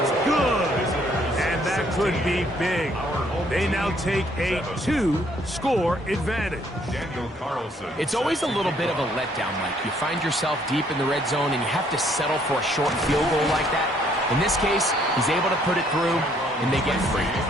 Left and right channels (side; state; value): both; normal; correlation 0.66